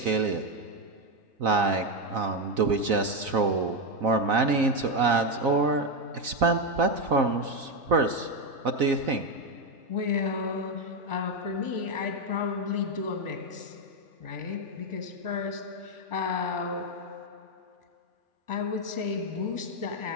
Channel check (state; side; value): late; left; 4.0 ms